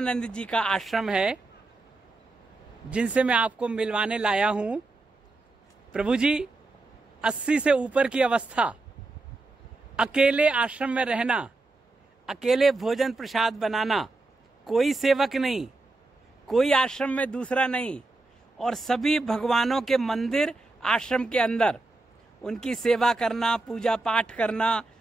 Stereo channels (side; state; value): left; quieter; 3.1 dB